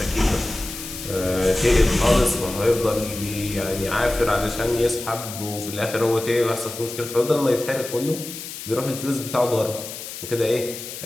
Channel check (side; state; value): left; noise; hiss, 10 dB below the sound